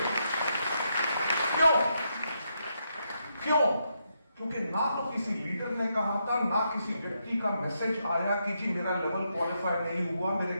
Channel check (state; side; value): inverted; both; correlation -0.81